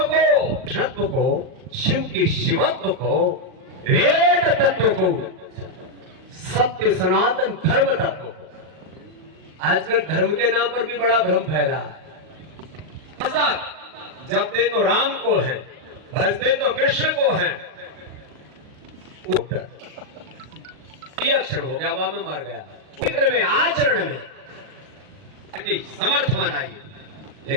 को, कृष्णत्व को, शिव के शिवत्व को, वेद तत्व को, सत्य सनातन धर्म तत्व को। आजकल धर्म के नाम पर भी बड़ा भ्रम फैला है। जपते तो राम को है, भजते तो कृष्ण को है। ये अक्षर हो गया, वहां में मर गया। चित्र में, आचरण में समर्थ बनाइए,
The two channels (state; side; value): late; left; 38 ms